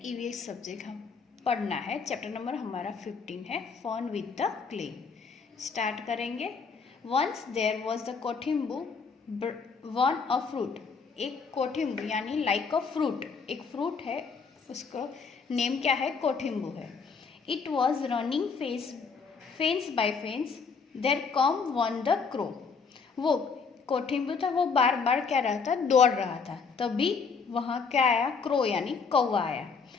ईवीएस सब्जेक्ट हम पढ़ना है। चैप्टर नंबर हमारा 15 है, fun with the clay. Start करेंगे। Once there was the Kothimbu one a fruit. एक कोठिम्बू यानी लाइक अ फ्रूट, एक फ्रूट है, उसको नेम क्या है? कोठिम्बू है। It was running fence by fence, there come one the crow. वो कोठिम्बू था, वो बार बार क्या रहा था? दौड़ रहा था। तभी वहाँ क्या आया? क्रो यानी कौवा आया।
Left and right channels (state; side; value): quieter; right; 5.3 dB